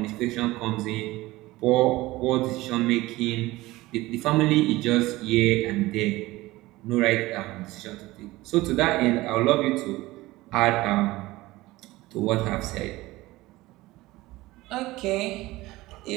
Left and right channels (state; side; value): quieter; left; 19.0 dB